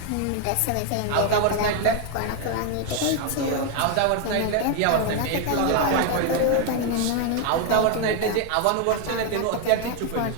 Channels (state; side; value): different; both; correlation 0.01